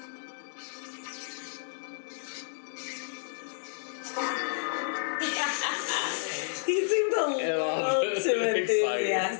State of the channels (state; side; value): silent; right; digital silence